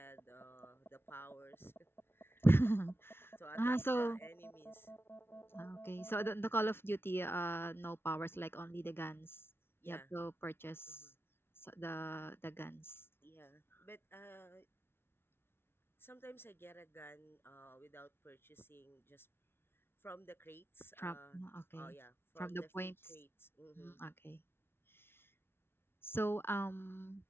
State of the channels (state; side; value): late; right; 0.12 ms